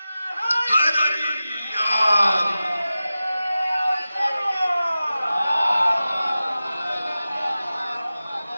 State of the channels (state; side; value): inverted; both; correlation -0.94